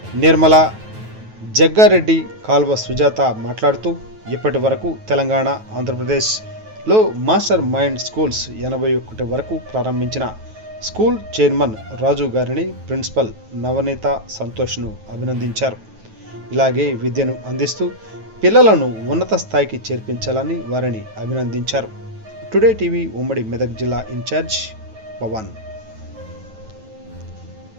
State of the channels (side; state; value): left; late; 9.2 ms